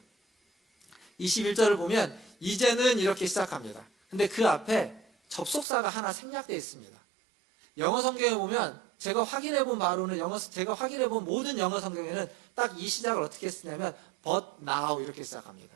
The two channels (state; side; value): drops out; left; at 5.7 s